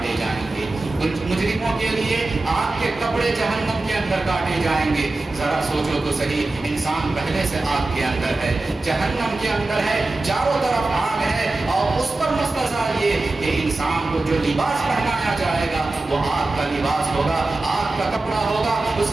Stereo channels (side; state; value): left; quieter; 3.1 dB